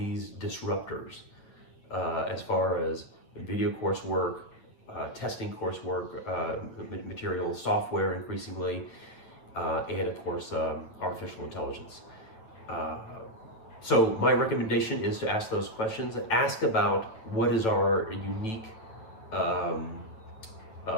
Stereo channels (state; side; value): late; right; 9.1 ms